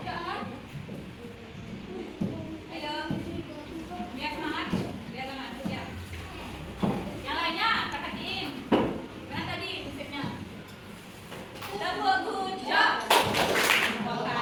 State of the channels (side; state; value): both; identical; correlation 1.00